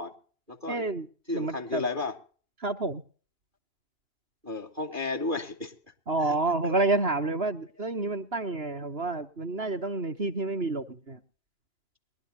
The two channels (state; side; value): late; left; 2.9 ms